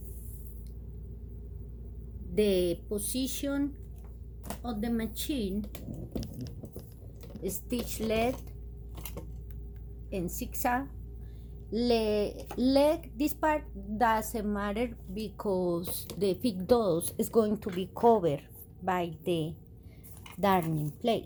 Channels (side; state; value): both; identical; correlation 1.00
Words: The position of the machine, stitch lead in zigzag. Leg, this part doesn't matter because the big dose is going to be covered by the darning